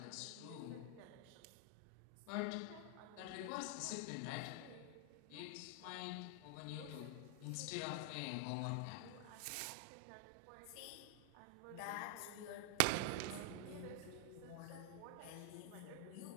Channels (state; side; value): different; both; correlation 0.00